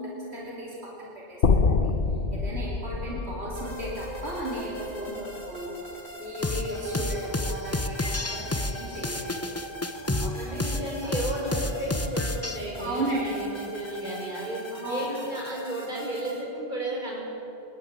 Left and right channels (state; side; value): normal; both; correlation 0.30